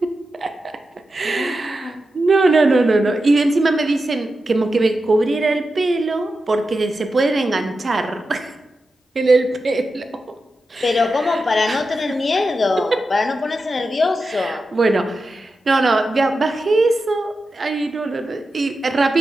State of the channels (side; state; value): both; normal; correlation 0.90